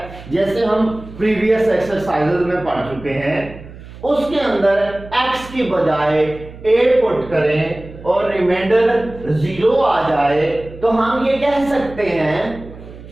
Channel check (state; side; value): noise; right; hum, 16 dB below the sound